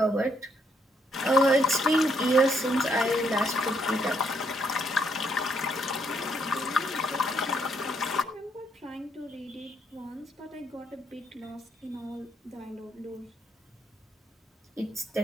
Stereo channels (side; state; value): both; normal; correlation 0.72